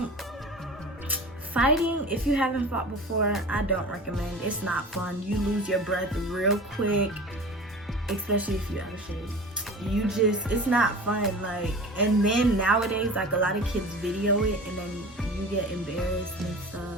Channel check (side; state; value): both; normal; correlation 0.37